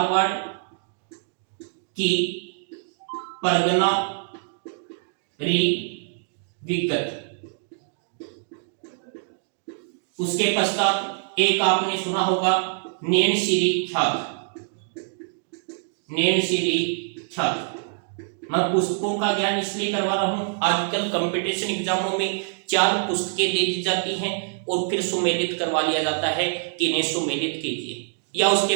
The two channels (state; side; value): silent; left; digital silence